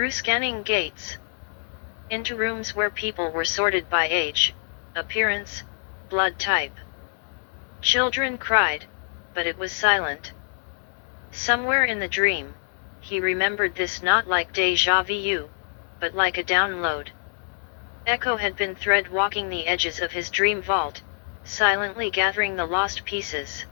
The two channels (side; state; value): right; silent; digital silence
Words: scanning gates. Into rooms where people were sorted by age, appearance, blood type. Children cried, but it was silent. Somewhere in the dream, he remembered this, not like déjà vu, but like a download. Echo had been thread walking the edges of his dream vault, silently gathering the lost pieces.